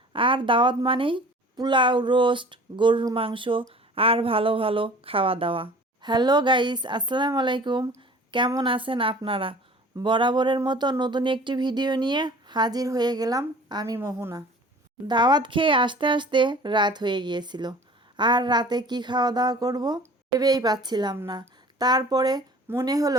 আর দাওয়াত মানেই পোলাও, রোস্ট, গরুর মাংস আর ভালো ভালো খাওয়া দাওয়া। হ্যালো গাইস, আসসালামু আলাইকুম। কেমন আছেন আপনারা? বরাবরের মতো নতুন একটি ভিডিও নিয়ে হাজির হয়ে গেলাম আমি মোহনা। দাওয়াত খেয়ে আসতে আসতে রাত হয়ে গিয়েছিল। আর রাতে কি খাওয়া দাওয়া করব ভেবেই পাচ্ছিলাম না। তারপরে মনে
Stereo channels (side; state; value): both; normal; correlation 0.45